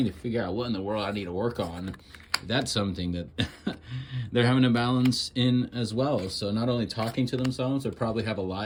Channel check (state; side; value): identical; both; correlation 1.00